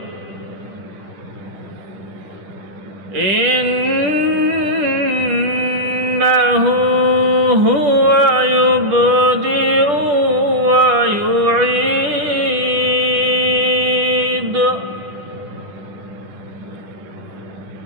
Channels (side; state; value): left; late; 10 ms